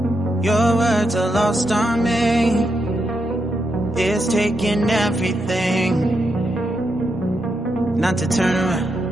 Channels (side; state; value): both; normal; correlation 0.83